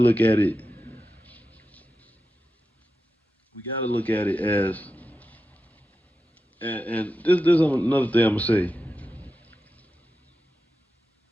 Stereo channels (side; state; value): both; normal; correlation 0.90